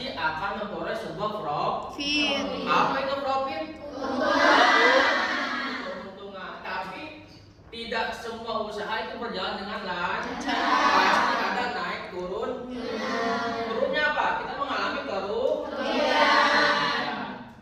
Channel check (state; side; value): identical; both; correlation 1.00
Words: akan memperoleh sebuah profit. Apa itu profit? Keuntungan. Tapi tidak semua usaha itu berjalan dengan lancar. Pasti ada naik turun. Turunnya apa? Kita mengalami kerugian.